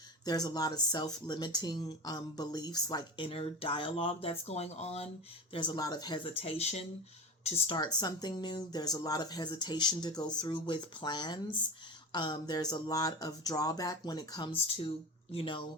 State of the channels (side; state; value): both; normal; correlation 0.27